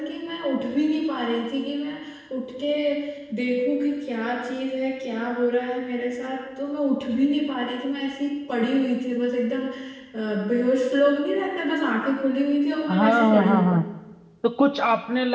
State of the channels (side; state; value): both; identical; correlation 1.00